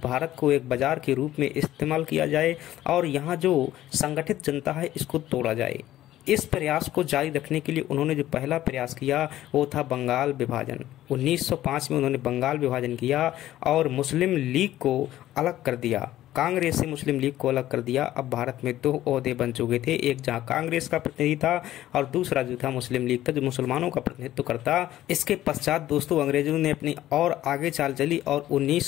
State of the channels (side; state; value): right; quieter; 13.8 dB